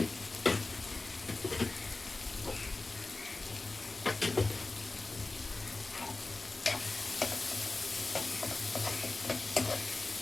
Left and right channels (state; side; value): quieter; right; 3.3 dB